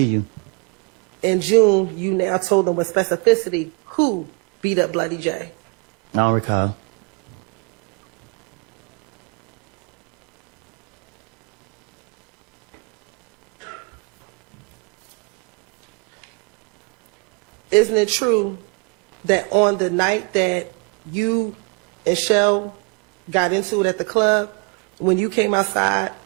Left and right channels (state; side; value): quieter; left; 32.4 dB